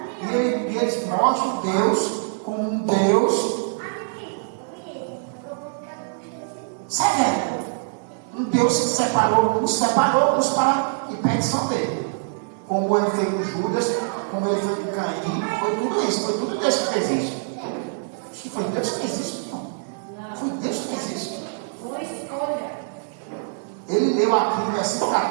E eles mostram Deus como um Deus severo. Um Deus que nos separou para a perdição dele. Como ele fez com Judas, como ele fez com Caim, foi tudo isso, foi tudo Deus que fez isso. Acho que foi Deus que fez isso, não. Foi Deus que fez isso. Foi escolha. Ele leu aqui no versículo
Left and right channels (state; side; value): silent; left; digital silence